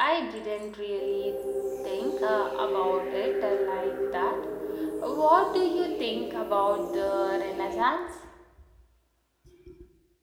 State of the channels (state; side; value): identical; both; correlation 1.00